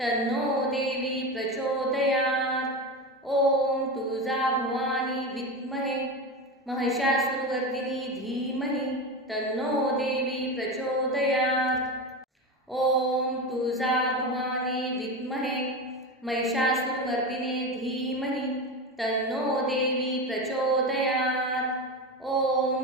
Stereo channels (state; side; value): normal; both; correlation 0.22